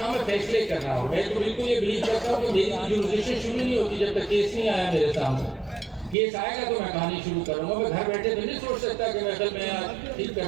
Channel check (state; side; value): drops out; left; at 6.2 s